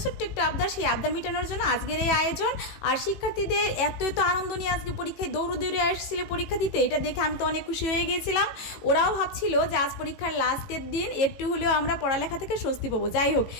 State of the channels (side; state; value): right; late; 18 ms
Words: ছোট্ট একটু আবদার। সেই আবদার মেটানোর জন্য আজকের এই আয়োজন। আর শিক্ষার্থীদের এত আনন্দ নিয়ে আজকে পরীক্ষায় দৌড়ে আসছিল পরীক্ষা দিতে, এটা দেখে আমি তো অনেক খুশি হয়ে গিয়েছিলাম। ওরাও ভাবছিল যে আজ পরীক্ষার লাস্টের দিন, একটু হলেও আমরা পড়ালেখা থেকে স্বস্তি পাবো। যাই হোক,